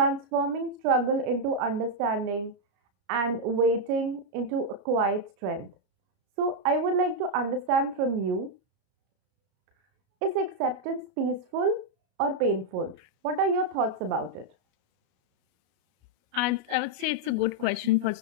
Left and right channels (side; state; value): left; late; 33 ms